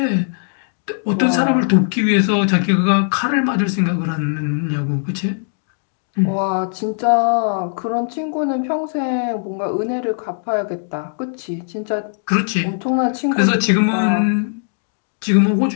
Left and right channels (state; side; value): silent; right; digital silence